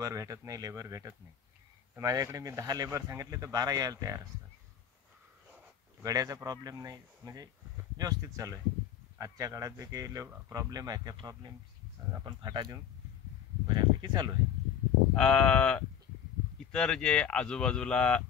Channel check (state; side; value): quieter; right; 8.6 dB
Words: भेटत नाही, तर माझ्याकडे मी 10 लेबर सांगितले तर 12 यायला तयार असतात. गड्याचा प्रॉब्लेम नाही, म्हणजे व्यवस्थित चालू आहे. आजच्या काळात जे काही प्रॉब्लेम आहे त्या प्रॉब्लेम आपण फाटा देऊन बऱ्यापैकी चालू आहे. इतर जे आजूबाजूला